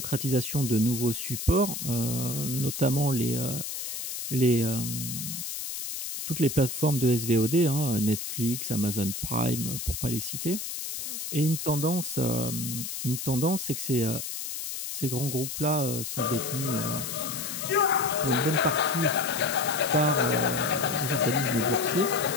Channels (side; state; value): left; noise; hiss, 5 dB below the sound